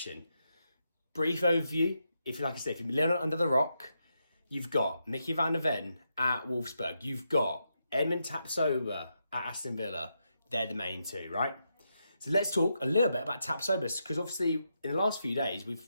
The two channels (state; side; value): inverted; both; correlation -0.83